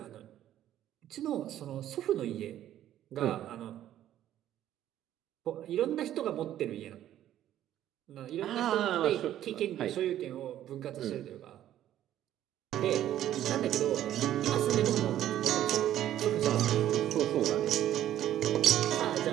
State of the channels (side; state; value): left; quieter; 12.1 dB